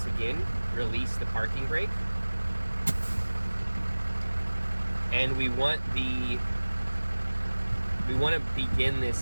again release the parking brake. And we want to begin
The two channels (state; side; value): inverted; both; correlation -1.00